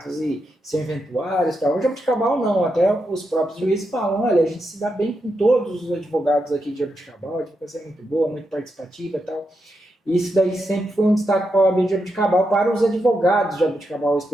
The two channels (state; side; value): normal; both; correlation 0.84